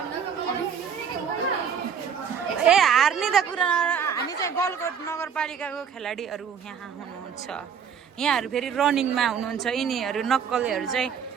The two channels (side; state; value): left; quieter; 7.3 dB